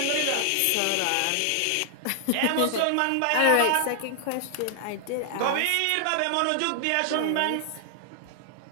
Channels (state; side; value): different; both; correlation 0.00